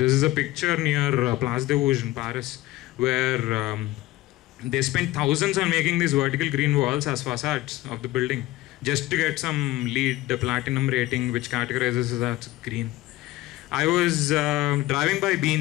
is a picture near Place des Vosges in Paris where they spent thousands on making these vertical green walls as facades of the building just to get some LEED, the platinum rating, which categorizes it as green. I was driving by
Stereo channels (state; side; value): quieter; right; 17.1 dB